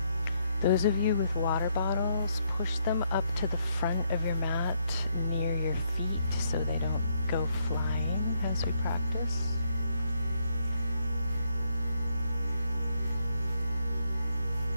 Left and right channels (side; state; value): both; inverted; correlation -0.75